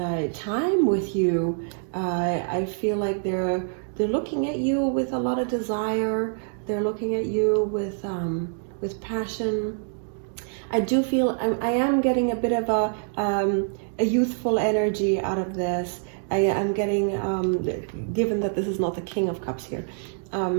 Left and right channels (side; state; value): left; silent; digital silence